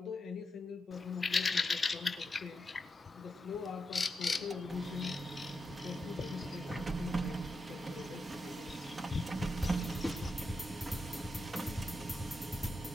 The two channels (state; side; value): normal; both; correlation 0.87